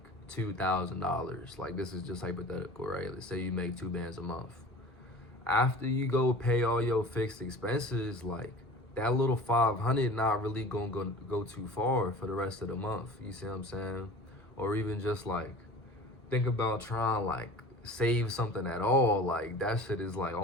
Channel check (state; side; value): normal; both; correlation 0.41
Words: $2,000. Like this is just hypothetical, right? Let's say you make 2 bands a month. After you go pay all your fixed expenses, like that little 500 not really gonna go too far for the rest of the month. You see what I'm saying? Or even just like think about trying like save something at all. Like that shit is like